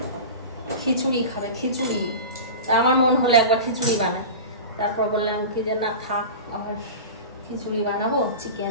খিচুড়ি খাবে, খিচুড়ি। তা আমার মন হলো একবার খিচুড়ি বানাই, তারপর বললাম কি যে না থাক, আবার খিচুড়ি বানাবো,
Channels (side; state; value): both; inverted; correlation -0.31